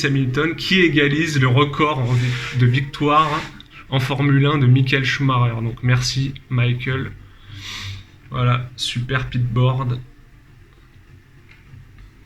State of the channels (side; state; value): both; identical; correlation 1.00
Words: Hamilton qui égalise le record de victoire en Formule 1 de Michael Schumacher. Donc merci Michael. Voilà, super pitboard.